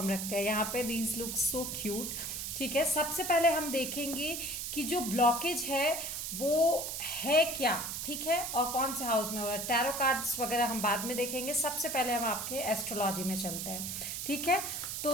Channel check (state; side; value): noise; right; hiss, 4 dB below the sound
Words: रखते हैं यहाँ पे। These look so cute. ठीक है, सबसे पहले हम देखेंगे कि जो ब्लॉकेज है वो है क्या। ठीक है, और कौन से हाउस में हो रहा है। टैरो कार्ड्स वगैरह हम बाद में देखेंगे, सबसे पहले हम आपके एस्ट्रोलॉजी में चलते हैं। ठीक है,